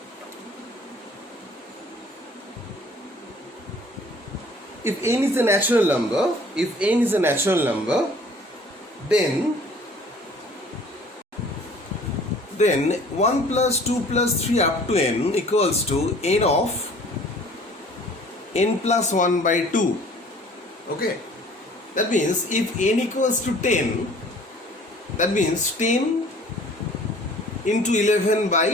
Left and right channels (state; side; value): normal; both; correlation 0.52